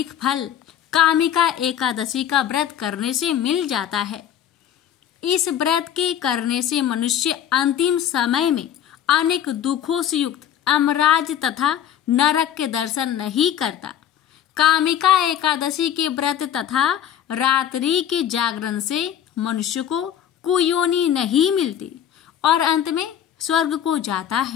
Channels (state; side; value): quieter; right; 10.1 dB